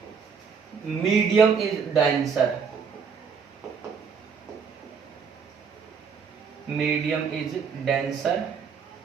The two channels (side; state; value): left; quieter; 6.2 dB